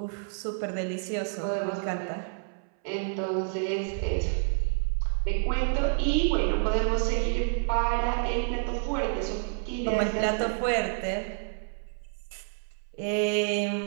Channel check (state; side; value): silent; left; 59 dB below the other